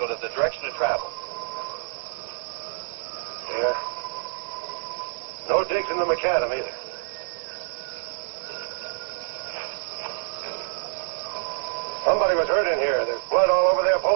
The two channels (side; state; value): left; silent; digital silence